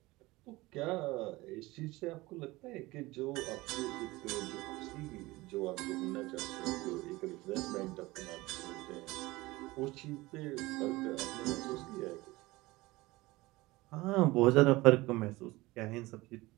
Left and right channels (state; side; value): quieter; left; 20.5 dB